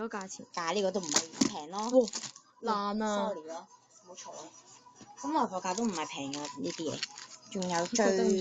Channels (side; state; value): both; identical; correlation 1.00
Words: 價錢，但係呢個都唔係平咯。爛啊 ！sorry 咯，冇錯啊。咁來貨價都唔係平㗎呢啲嘢，仲有最